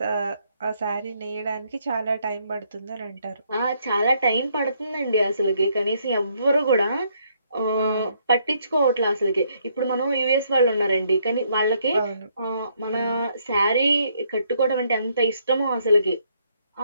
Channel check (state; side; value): inverted; both; correlation -0.71